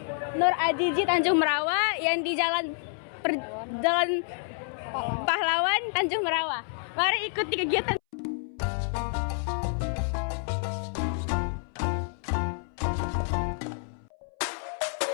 Nur Ajiji Tanjung Merawa yang di Jalan Pahlawan Tanjung Merawa. Mari ikuti kegiatan.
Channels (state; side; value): silent; right; 59 dB below the other